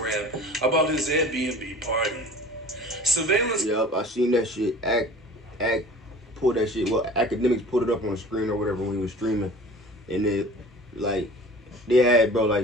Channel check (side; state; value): both; normal; correlation 0.43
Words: about his Airbnb party. Surveillance. Yup, I seen that shit. Pull that shit. Well, academics put it up on the screen or whatever when he was streaming, and it. Like, they had, bro,